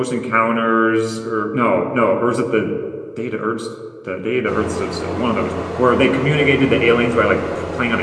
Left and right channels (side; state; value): both; identical; correlation 1.00